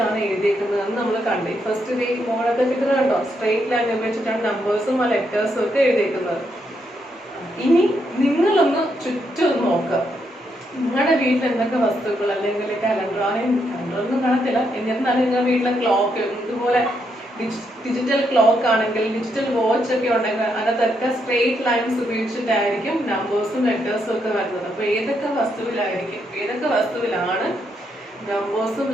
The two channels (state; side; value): normal; both; correlation 0.78